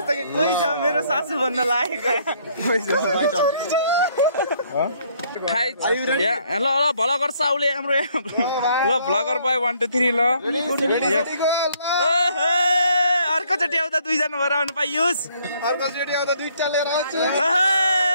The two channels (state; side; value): inverted; both; correlation -0.66